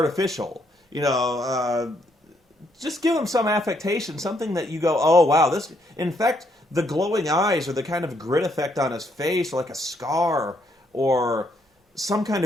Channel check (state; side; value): normal; both; correlation 0.73